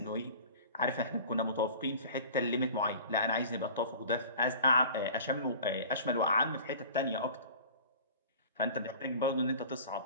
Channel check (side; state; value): both; inverted; correlation -0.42